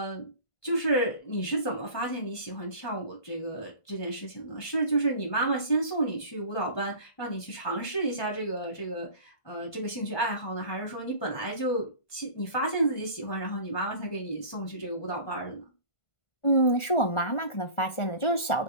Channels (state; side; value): late; right; 1.5 ms